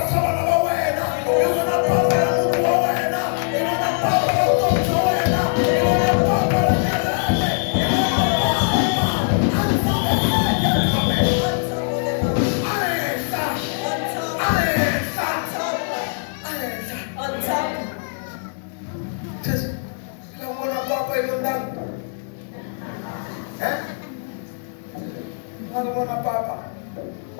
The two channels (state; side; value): silent; right; digital silence